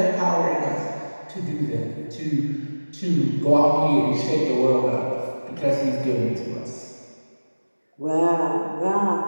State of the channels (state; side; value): inverted; both; correlation -1.00